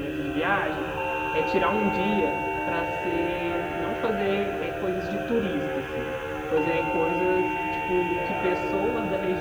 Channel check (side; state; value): both; identical; correlation 1.00